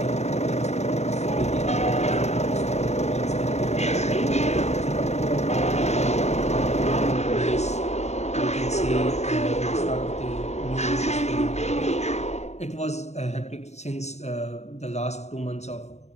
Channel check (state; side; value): late; right; 0.32 ms